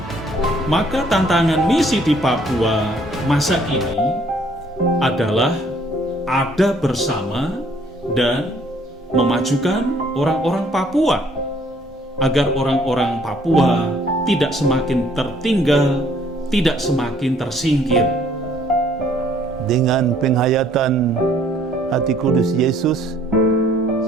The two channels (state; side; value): normal; both; correlation 0.62